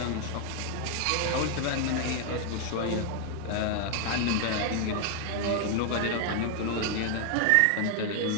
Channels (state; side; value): different; both; correlation 0.00